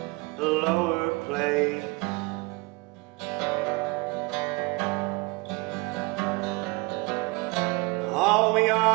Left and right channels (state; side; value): quieter; left; 25.3 dB